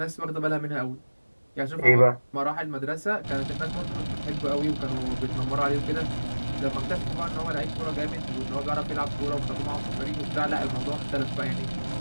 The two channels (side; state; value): both; inverted; correlation -1.00